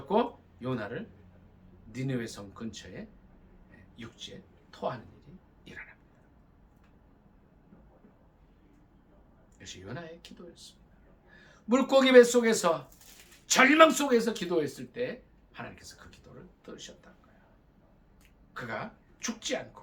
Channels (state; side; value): identical; both; correlation 1.00